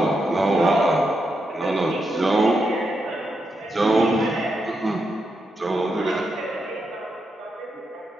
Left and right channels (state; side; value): normal; both; correlation 0.84